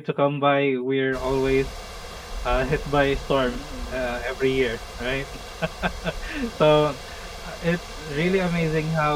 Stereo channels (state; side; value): identical; both; correlation 1.00